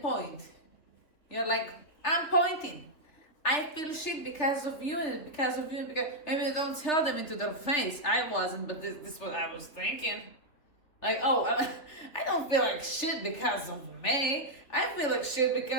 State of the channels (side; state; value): right; late; 3.1 ms